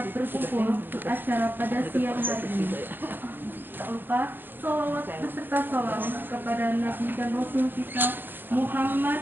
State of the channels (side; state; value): left; late; 0.096 ms